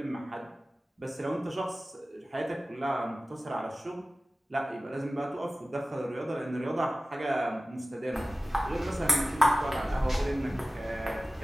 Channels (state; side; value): normal; both; correlation 0.96